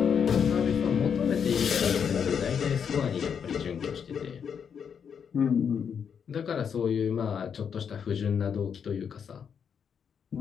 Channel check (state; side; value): quieter; right; 7.2 dB